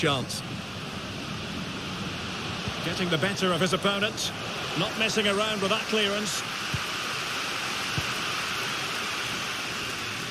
Getting the better of his opponent, not messing around with that clearance.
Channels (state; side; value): identical; both; correlation 1.00